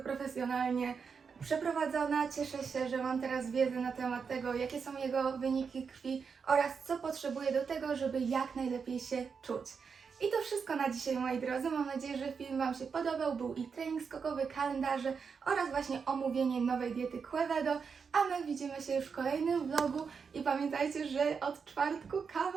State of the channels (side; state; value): left; quieter; 5.8 dB